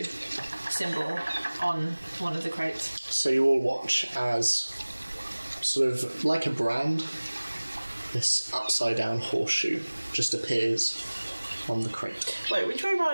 symbol on one of the crates. So you all watch as, sort of like a brand, this upside down horseshoe just appears on the crate. Wait, which way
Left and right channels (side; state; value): both; inverted; correlation -1.00